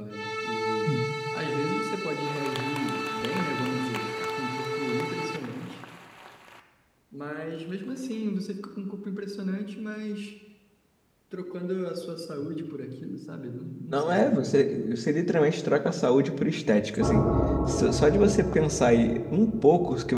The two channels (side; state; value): both; identical; correlation 1.00